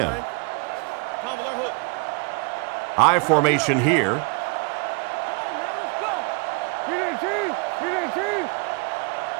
I formation here.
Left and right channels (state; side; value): quieter; left; 30.7 dB